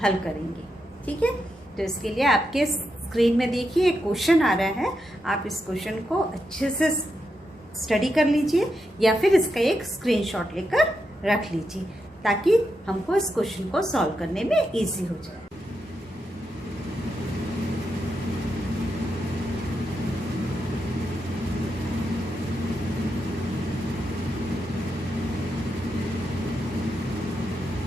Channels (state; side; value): normal; both; correlation 0.85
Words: हल करेंगे। ठीक है, तो इसके लिए आपके स्क्रीन में देखिए एक क्वेश्चन आ रहा है। आप इस क्वेश्चन को अच्छे से स्टडी कर लीजिए या फिर इसका एक स्क्रीनशॉट लेकर रख लीजिए ताकि हमको इस क्वेश्चन को सॉल्व करने में इजी हो जाए।